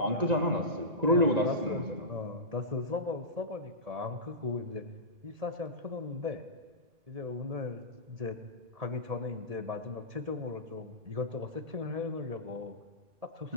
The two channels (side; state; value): left; late; 1.9 ms